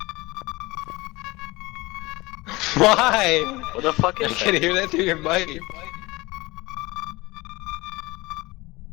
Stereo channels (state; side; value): quieter; right; 21.8 dB